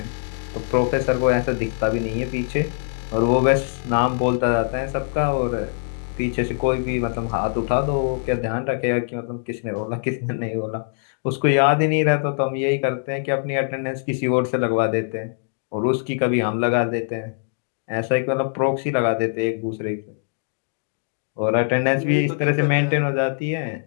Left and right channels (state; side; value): silent; right; digital silence